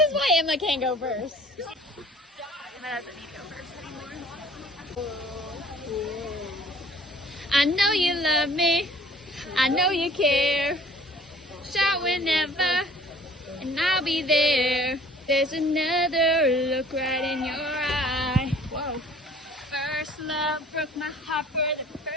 why Emma can't go first. Emma doesn't need to go first anymore. I know you love me. I know you care. Shout whenever, and I'll be there. There's another look right in your eye. Whoa. First love broke my heart for the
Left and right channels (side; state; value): both; normal; correlation 0.52